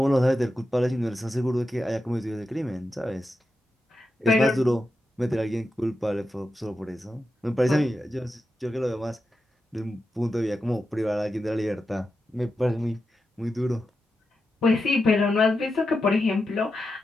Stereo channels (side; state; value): both; normal; correlation 0.89